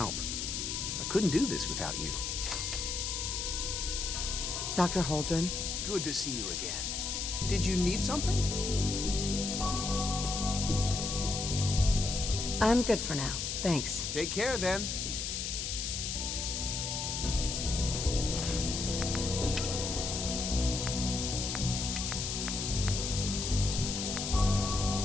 I couldn't do this without you. Dr. Holdren? Good to see you again. Did you need something? I'm good for now. Thanks. Take care then.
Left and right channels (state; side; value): noise; left; hiss, 2 dB below the sound